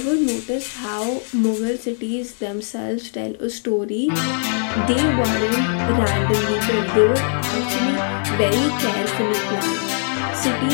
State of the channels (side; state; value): right; silent; digital silence